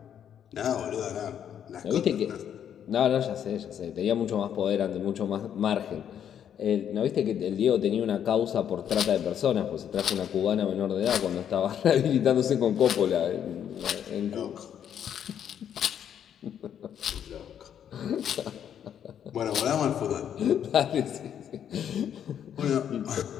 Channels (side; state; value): right; quieter; 9.2 dB